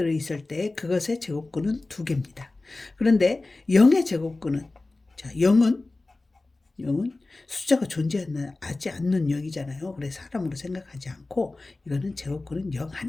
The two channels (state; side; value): quieter; right; 3.2 dB